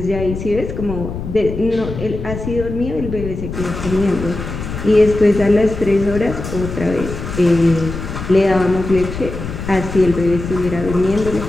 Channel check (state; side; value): noise; left; rumble, 7 dB below the sound